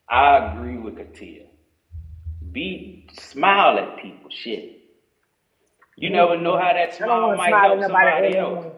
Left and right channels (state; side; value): identical; both; correlation 1.00